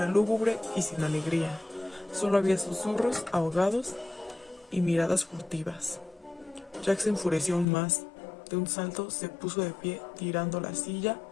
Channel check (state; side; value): drops out; right; at 7.7 s